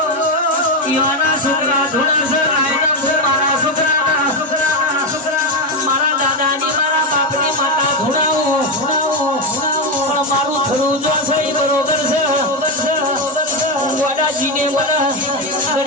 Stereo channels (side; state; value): both; normal; correlation 0.09